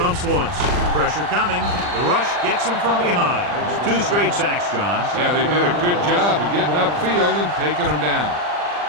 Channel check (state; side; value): late; left; 40 ms